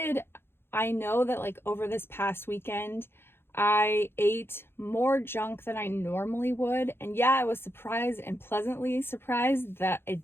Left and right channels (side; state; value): right; late; 0.11 ms